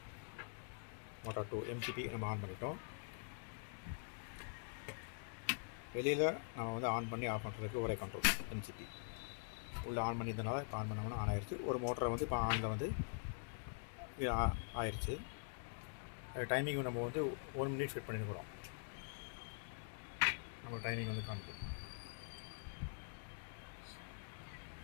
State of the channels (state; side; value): silent; right; digital silence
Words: motor 2 MCP நம்ம on பண்ணிட்டோம். வெளியில் நம்ம வந்து ஆன் பண்ணி ஆஃப் பண்ணுறதுக்கு ஒரே கண்ட்ரோல் MCP. உள்ளே ஆன் பண்ணியிருந்தனால இப்போ ஆன் பண்ணோம்னா ஆன் ஆயிடுச்சு. ஒரு மோட்டரை வந்து இப்போ ஆனில் வந்து ஆயிடுச்சு. டைமிங் நம்ம வந்து 1 minute செட் பண்ணியிருக்கிறோம். நம்ம டைமிங் வந்து காமிக்கும்.